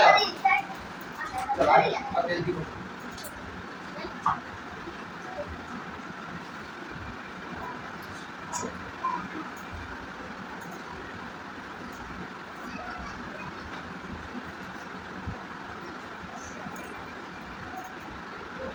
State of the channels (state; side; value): identical; both; correlation 1.00